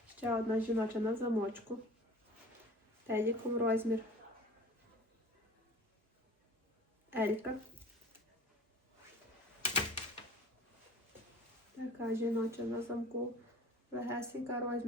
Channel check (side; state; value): both; normal; correlation 0.43